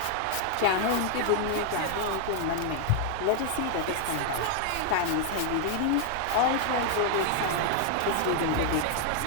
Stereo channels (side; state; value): both; different; correlation 0.00